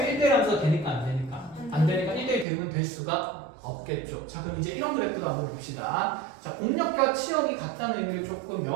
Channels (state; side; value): drops out; left; at 2.5 s